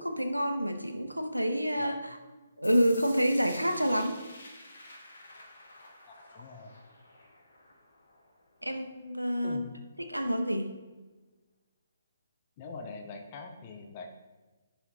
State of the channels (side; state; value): both; inverted; correlation -0.92